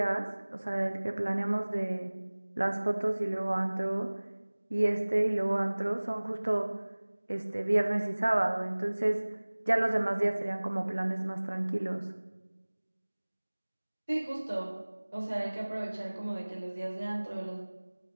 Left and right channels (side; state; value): both; inverted; correlation -1.00